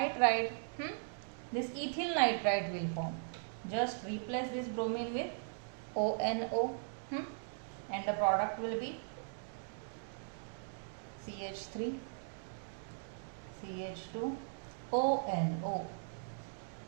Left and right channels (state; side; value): silent; left; digital silence